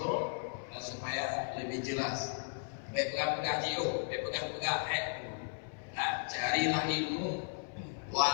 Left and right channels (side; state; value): right; silent; 54 dB below the other